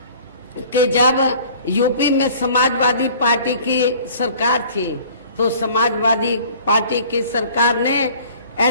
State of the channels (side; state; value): both; inverted; correlation -0.50